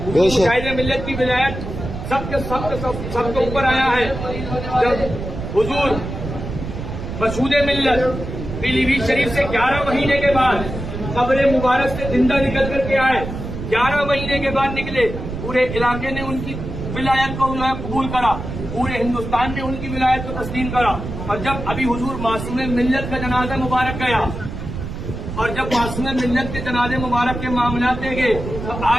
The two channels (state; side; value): noise; right; rumble, 7 dB below the sound